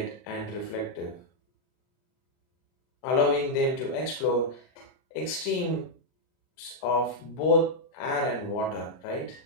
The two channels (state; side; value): late; right; 39 ms